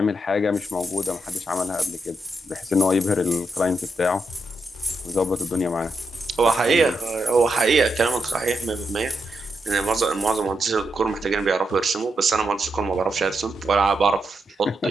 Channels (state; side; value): normal; both; correlation 0.83